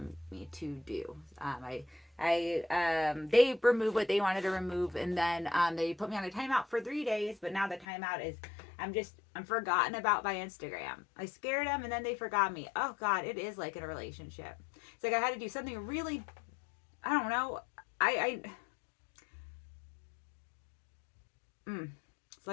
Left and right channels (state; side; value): drops out; right; at 7.9 s